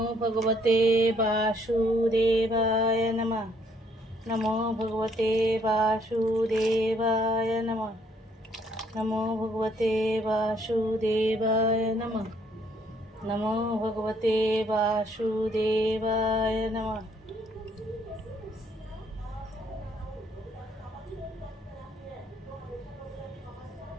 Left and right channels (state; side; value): normal; both; correlation 0.67